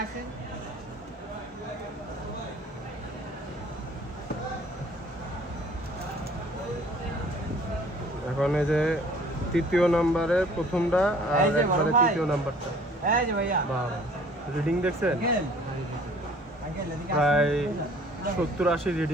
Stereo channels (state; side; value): normal; both; correlation 0.53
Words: এখন এই যে তৃতীয় নাম্বারের প্রথমটা আর একবারে তৃতীয় নাম্বারটা, এই যে ভাইয়া বাহ রিডিং দেখছেন, প্রায় 70-80